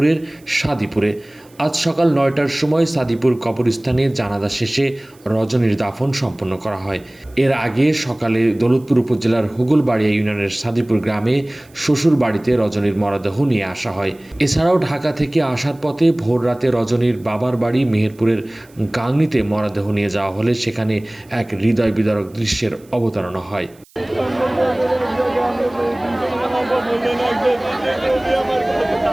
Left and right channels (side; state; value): right; noise; hiss, 29 dB below the sound